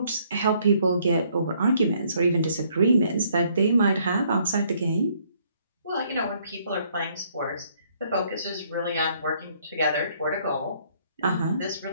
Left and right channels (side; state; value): both; inverted; correlation -0.66